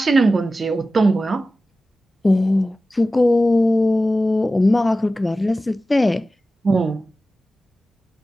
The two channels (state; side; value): normal; both; correlation 0.94